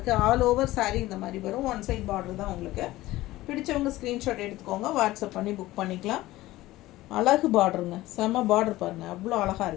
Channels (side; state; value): right; quieter; 17.2 dB